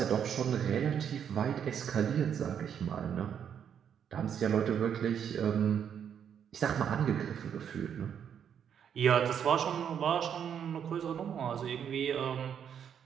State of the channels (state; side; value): quieter; left; 8.4 dB